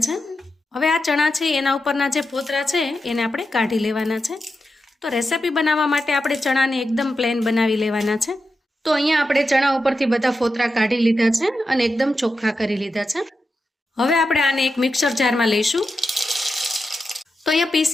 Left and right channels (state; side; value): normal; both; correlation 0.89